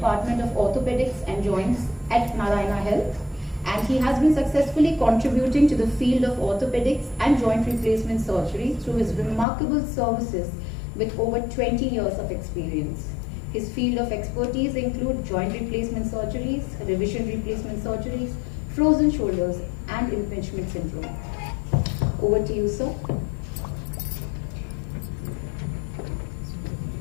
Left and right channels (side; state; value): right; drops out; at 9.5 s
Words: of Orthopedics and Joints at Narayana Health, and he has been successfully contributing to the field of orthopedics and joint replacement surgery through his remarkable services with over 20 years of experience. His field of expertise include joint replacement surgeries, revision replacement surgeries, frozen shoulders, and impingement syndrome. Over to you, sir.